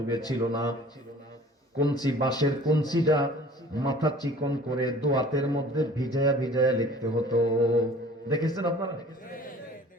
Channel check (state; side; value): normal; both; correlation 0.48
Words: ছিল না, কঞ্চি, বাঁশের কঞ্চিটা মাথা চিকন করে দোয়াতের মধ্যে ভিজায়া ভিজায়া লিখতে হতো। দেখেছেন আপনারা?